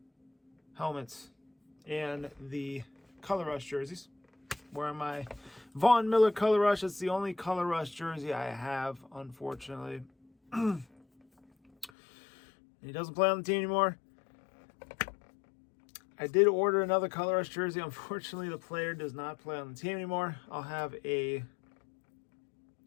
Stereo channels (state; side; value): drops out; right; at 11.9 s